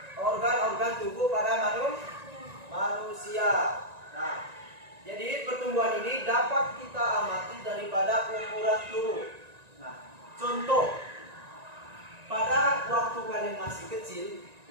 organ-organ tubuh pada manusia. Nah, jadi pertumbuhan ini dapat kita amati daripada ukuran tubuh. Nah, contoh, pada waktu kalian masih kecil,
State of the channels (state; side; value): late; left; 1.9 ms